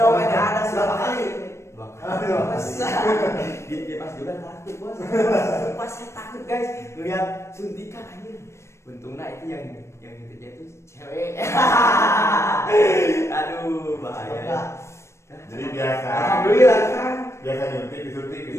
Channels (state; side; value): late; right; 0.13 ms